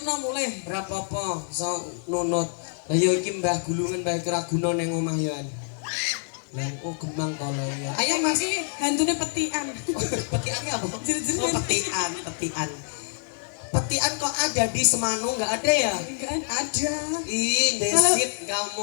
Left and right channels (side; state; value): right; silent; digital silence